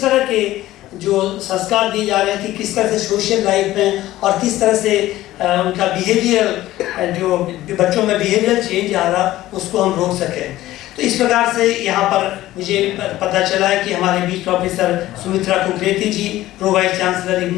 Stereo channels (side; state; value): right; quieter; 15.5 dB